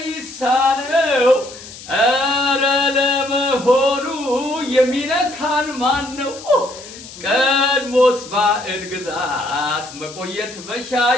ኧረ ለመሆኑ የሚነካን ማን ነው? ቀድሞስ ባዕድ ግዛት መቆየት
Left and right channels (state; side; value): noise; left; hiss, 16 dB below the sound